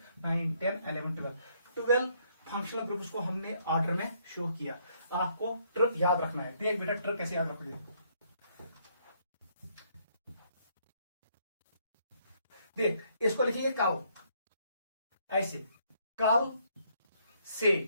9 10 11 12 फंक्शनल ग्रुप्स को हमने ऑर्डर में शो किया। आपको ट्रिक याद रखना है। देख बेटा ट्रिक कैसे याद रखोगे। देख इसको लिखेंगे कल, ऐसे कल से,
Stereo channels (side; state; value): both; inverted; correlation -0.69